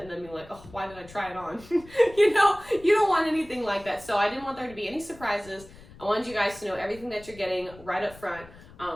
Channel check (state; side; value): noise; left; rumble, 20 dB below the sound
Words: and then being like, oh, why did I try it on? You know, you don't want anything like that. So I didn't want there to be any surprises. I wanted you guys to know everything that you're getting right up front.